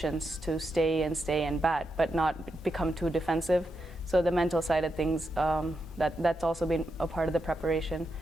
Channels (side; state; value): both; normal; correlation 0.85